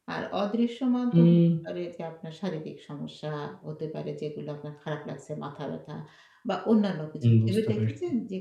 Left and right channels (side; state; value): both; identical; correlation 1.00